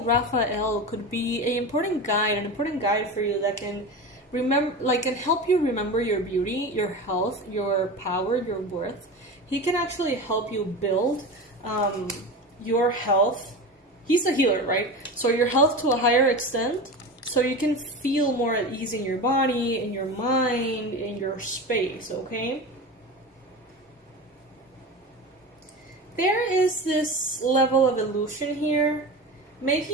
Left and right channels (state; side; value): normal; both; correlation 0.28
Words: Raphael could be an important guide for you that can can help you remember your beauty, your health, your power, your worth. He can actually help you build your health. He's a healer, right? So your health to a higher extent, so you can feel more at ease in your body, in your mind, in your space, okay? There is this level of illusion here,